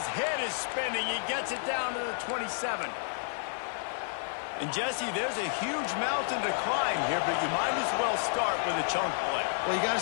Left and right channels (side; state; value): right; silent; digital silence